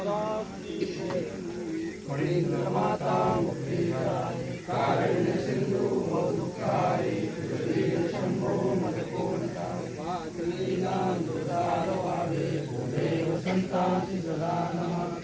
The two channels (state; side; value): identical; both; correlation 1.00